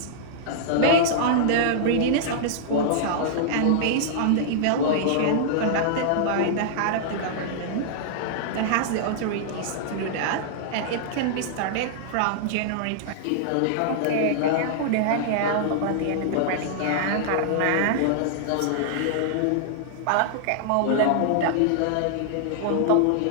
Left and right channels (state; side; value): different; both; correlation -0.01